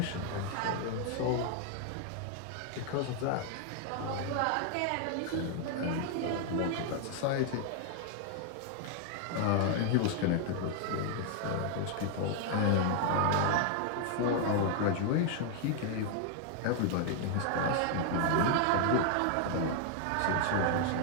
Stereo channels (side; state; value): both; different; correlation 0.00